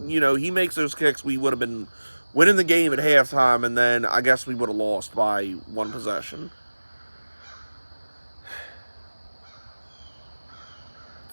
he makes those kicks, we would have been winning the game at halftime, and then I guess we would have lost by one possession.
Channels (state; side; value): inverted; both; correlation -1.00